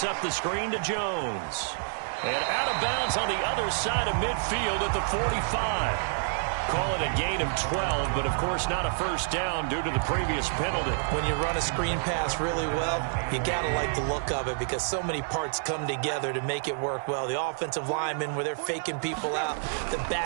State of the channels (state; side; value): silent; left; 59 dB below the other